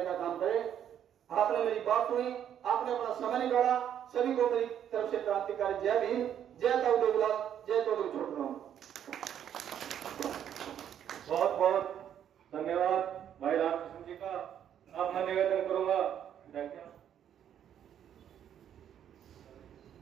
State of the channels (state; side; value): quieter; left; 9.7 dB